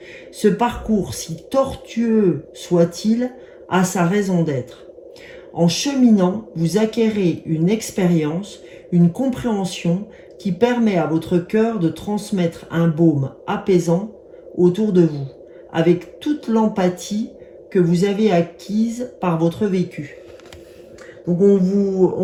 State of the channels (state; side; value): identical; both; correlation 1.00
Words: Ce parcours, si tortueux soit-il, a sa raison d'être. En cheminant, vous acquérez une expérience, une compréhension qui permet à votre cœur de transmettre un baume apaisant autour de vous, avec toute l'empathie que vous avez acquise par votre vécu. Donc on